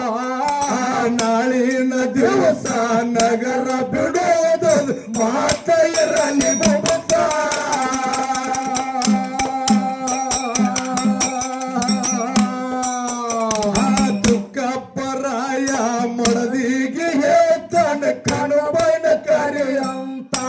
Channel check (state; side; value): identical; both; correlation 1.00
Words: ನಾಳಿನ ದಿವಸ ನಗರ ಬಿಡೋದು ಮಾತ ಇರಲಿ ಬುಬುತ್ತ ತುಕ್ಕಪ್ಪರಾಯ ಮಡದಿಗೆ ಹೇಳ್ತಾನ ಕಣಬೈನ ಕರೆಯಂತ